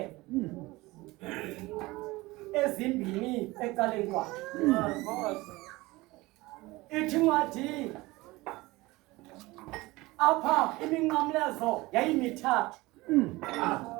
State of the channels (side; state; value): left; quieter; 20.9 dB